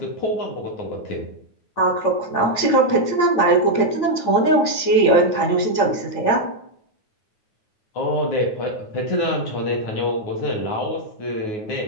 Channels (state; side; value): late; right; 9.4 ms